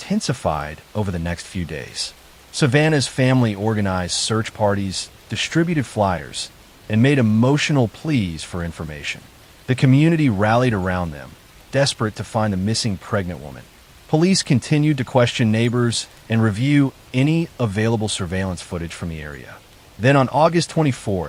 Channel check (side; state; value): both; identical; correlation 1.00